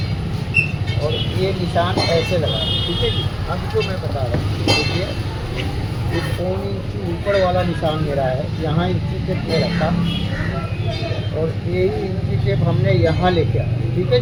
और ये निशान ऐसे लगाया, ठीक है जी। अब जो मैं बता रहा हूँ, देखिए ये 4 इंच ऊपर वाला निशान मेरा है, यहाँ इंची टेप में रखा, और यही इंची टेप हमने यहाँ लेके आया, ठीक है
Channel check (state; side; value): identical; both; correlation 1.00